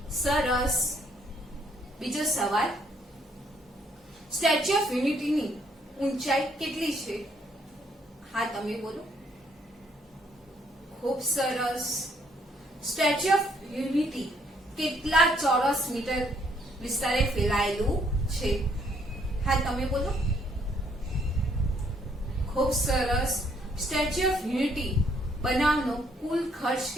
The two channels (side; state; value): both; normal; correlation 0.68